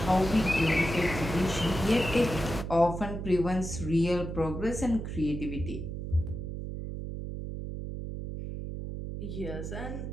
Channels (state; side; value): noise; right; hum, 6 dB below the sound